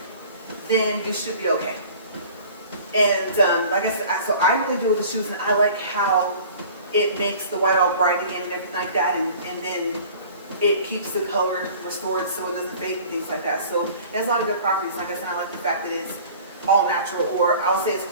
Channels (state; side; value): inverted; both; correlation -0.46